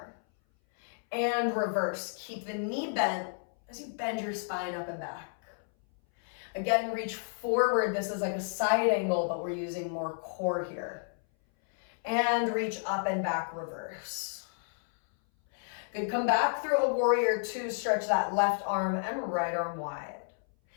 And reverse, keep the knee bent as you bend your spine up and back. Again, reach forward. This is like a side angle, but we're using more core here. And reach up and back, reverse. Good, come back through a warrior two, stretch that left arm and right arm wide.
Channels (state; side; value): silent; right; 57 dB below the other